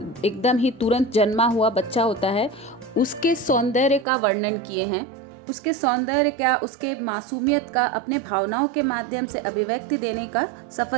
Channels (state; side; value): drops out; left; at 4.0 s